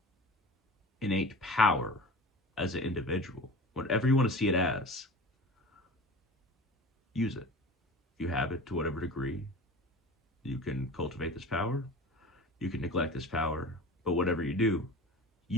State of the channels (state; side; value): normal; both; correlation 0.37